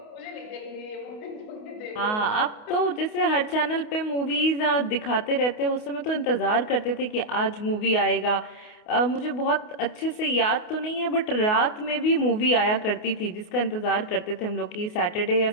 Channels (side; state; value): right; late; 28 ms